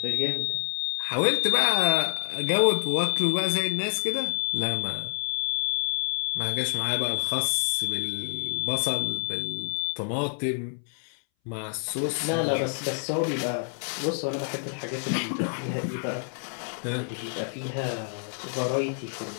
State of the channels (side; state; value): right; silent; 60 dB below the other